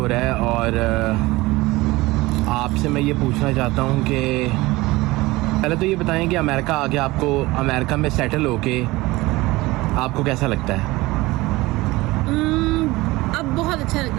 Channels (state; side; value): quieter; left; 20.3 dB